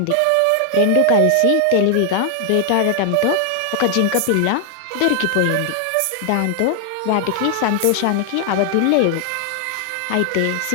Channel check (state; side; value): different; both; correlation 0.00